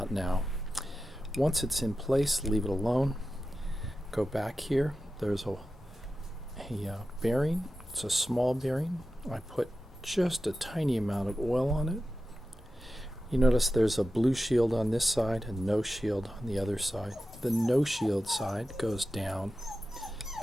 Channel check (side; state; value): both; normal; correlation 0.92